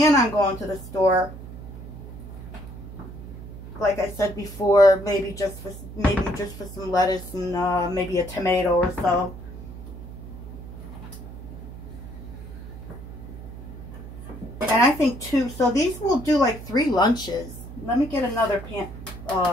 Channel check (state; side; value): noise; right; hum, 12 dB below the sound